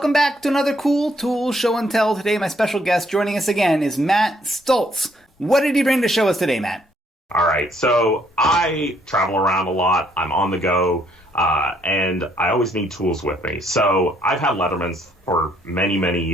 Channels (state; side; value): normal; both; correlation 0.68